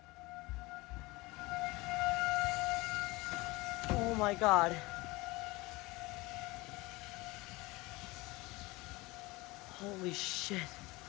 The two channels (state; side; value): quieter; right; 22.3 dB